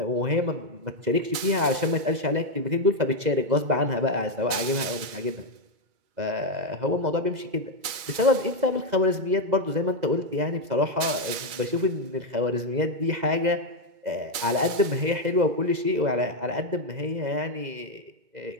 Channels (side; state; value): left; late; 2.3 ms